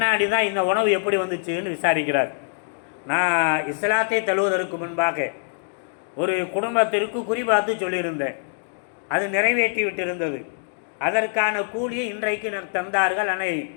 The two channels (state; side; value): silent; right; digital silence